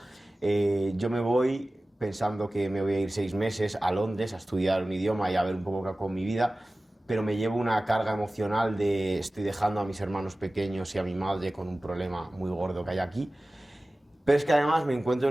Yo me voy pensando que me voy a ir 6 meses a Londres a estudiar un idioma y a ver un poco qué hago con mi vida, pero me llevo una carga emocional de estoy dejando a mis hermanos pequeños y a mi madre con un problema muy gordo que hay aquí. Pero es que además me encuentro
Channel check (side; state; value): both; normal; correlation 0.97